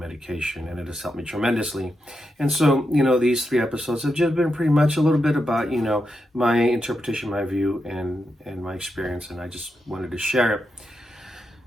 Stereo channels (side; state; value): both; normal; correlation 0.86